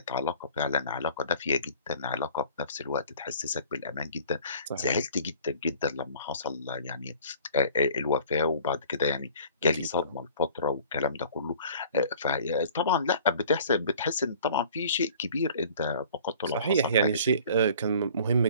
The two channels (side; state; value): both; inverted; correlation -0.49